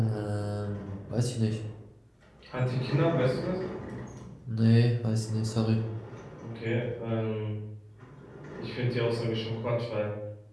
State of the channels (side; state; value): both; identical; correlation 1.00